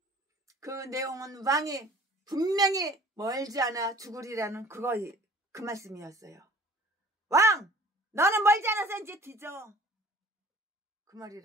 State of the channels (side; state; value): both; normal; correlation 0.50